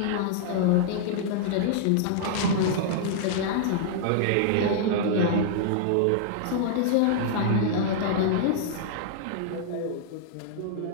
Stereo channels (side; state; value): both; different; correlation -0.01